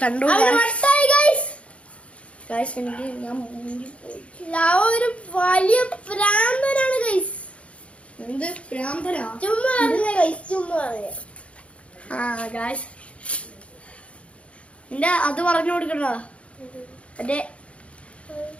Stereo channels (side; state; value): right; late; 0.062 ms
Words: കണ്ടോ? ഗായ്സ് എനിക്ക് ഞാൻ ഒരു വലിയ പ്രാന്തനാണ് ഗൈസ്. എന്ത് പ്രാന്തനാ? ചുമ്മാ പറഞ്ഞ ഗൈസ്, ചുമ്മാ പറഞ്ഞ. ആ ഗായ്സ് നിന്റെ അത് പറഞ്ഞു കൊടുക്കണോ? മറ്റേ